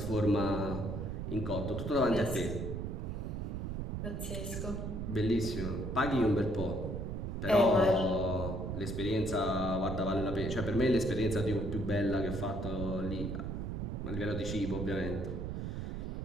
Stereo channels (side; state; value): right; noise; rumble, 4 dB below the sound